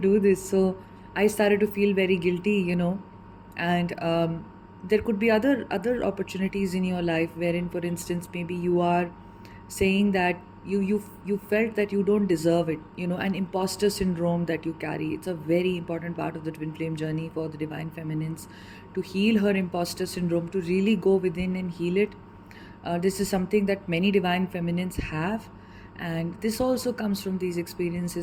this. So I started to feel very guilty, and there could be other opportunities in your life wherein, for instance, maybe you are saying that you felt that you don't deserve it, an imposter syndrome that you carry. It's a very important part of the twin flame journey for the divine feminines, to heal her imposter syndrome, to really go within and heal it. This is something that many divine feminines have, and this also comes from these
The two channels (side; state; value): both; identical; correlation 1.00